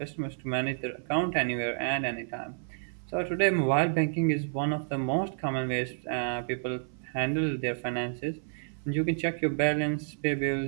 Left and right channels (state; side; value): silent; left; 57 dB below the other